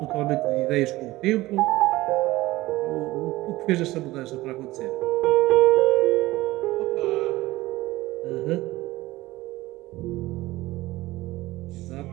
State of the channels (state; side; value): quieter; left; 18.3 dB